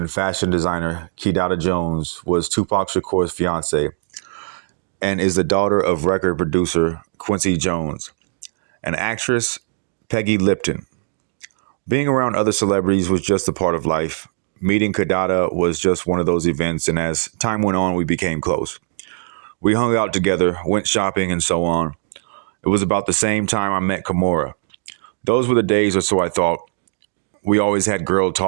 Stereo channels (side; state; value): left; silent; digital silence